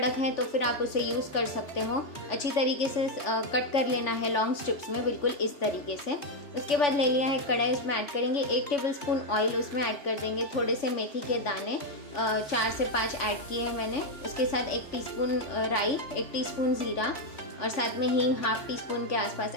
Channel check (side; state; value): right; late; 3.5 ms